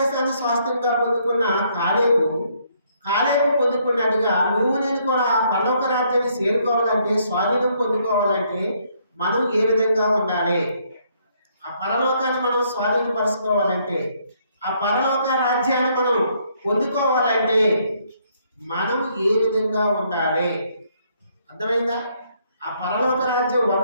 స్వాస్థ్యంగా పొందుకున్న కాలేబు పొందుకున్నట్టుగా నువ్వు నేను కూడా పరలోక రాజ్యాన్ని చేరుకోవాలంటే, స్వాధీనం పొందుకోవాలంటే మనం ఏ విధంగా ఉండాలి? ఆ పరలోకాన్ని మనం స్వాధీనపరుచుకోవాలంటే, ఆ పరలోక రాజ్యాన్ని మనం పొందుకోవాలంటే మనం ఏ విధంగా ఉండాలి? అర్థమైందా? ఆ పరలోక రాజ్యం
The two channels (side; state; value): both; inverted; correlation -0.69